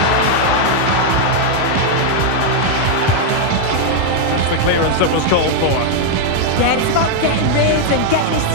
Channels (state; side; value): different; both; correlation 0.00